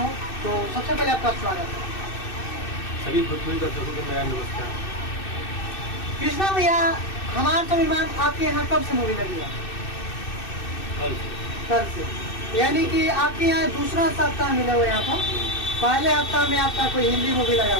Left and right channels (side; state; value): right; late; 2.6 ms